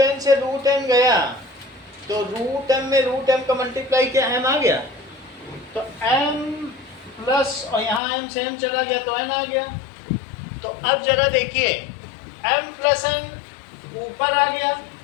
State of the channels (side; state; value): right; drops out; at 8.0 s